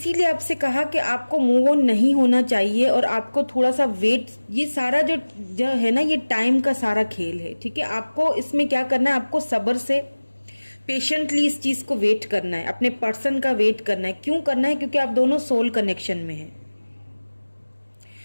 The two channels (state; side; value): inverted; both; correlation -1.00